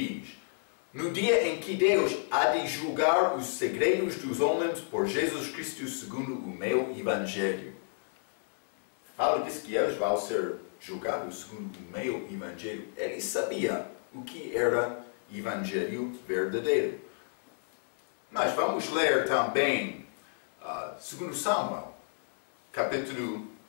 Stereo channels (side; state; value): right; silent; digital silence